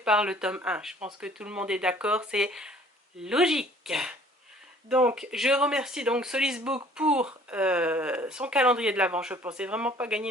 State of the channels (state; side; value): normal; both; correlation 0.54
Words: le tome 1. Je pense que tout le monde est d'accord, c'est logique. Donc, je remercie donc Solisbook pour son calendrier de l'Avent. Je ne pensais vraiment pas gagner